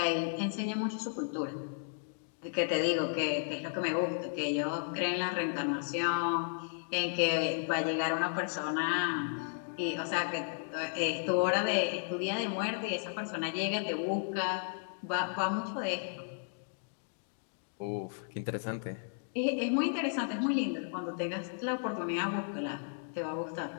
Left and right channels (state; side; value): silent; right; digital silence